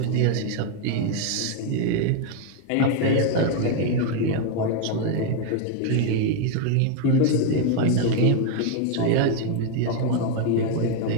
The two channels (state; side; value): different; both; correlation 0.01